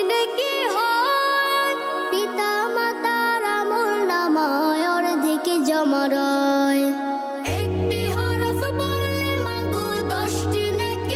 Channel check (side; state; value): both; identical; correlation 1.00